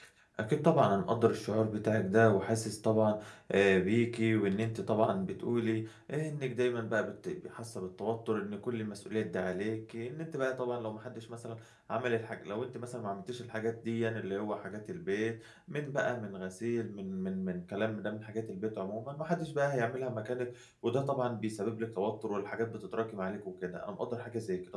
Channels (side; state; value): both; identical; correlation 1.00